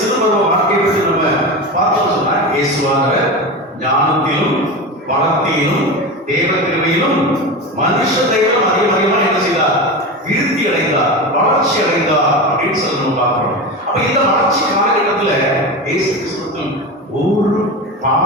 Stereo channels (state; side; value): normal; both; correlation 0.24